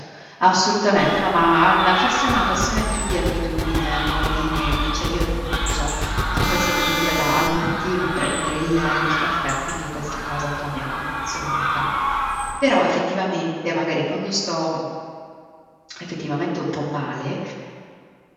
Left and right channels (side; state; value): both; identical; correlation 1.00